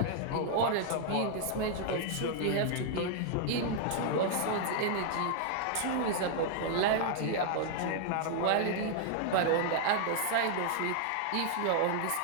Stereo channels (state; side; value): different; both; correlation 0.00